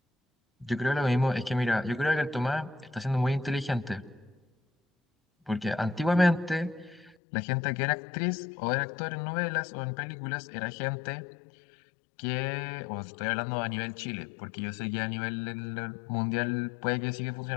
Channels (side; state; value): right; drops out; at 7.2 s